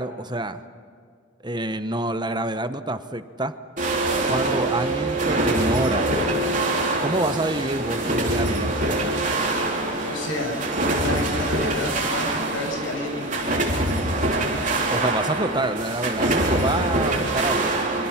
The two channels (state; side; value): normal; both; correlation 0.26